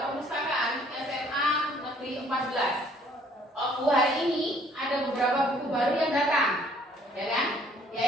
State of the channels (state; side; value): normal; both; correlation 0.60